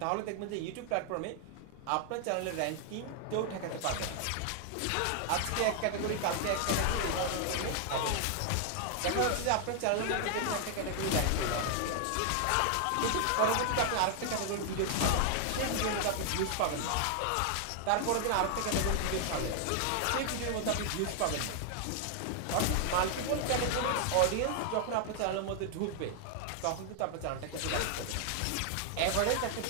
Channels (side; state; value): both; different; correlation 0.00